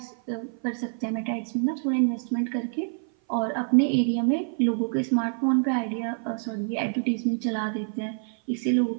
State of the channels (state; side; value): silent; left; 56 dB below the other